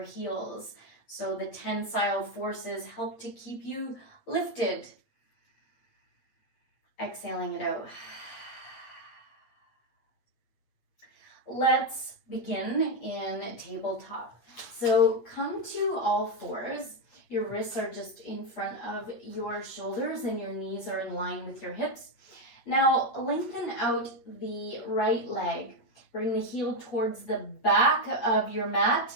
heels. So the tensile forces help to keep you lifted. Exhaling it out. Let's begin in tabletop. So come to all fours. Your wrists are just in front of your shoulders and your knees are in line with your hips. Now lengthen out the right leg. Bring the heel towards the back of your mat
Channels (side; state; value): right; late; 8.5 ms